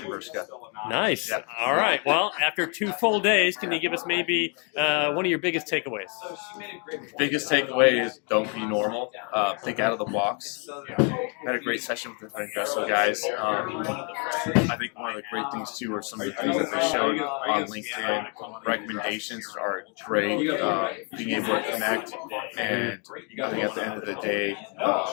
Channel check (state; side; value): quieter; right; 36.8 dB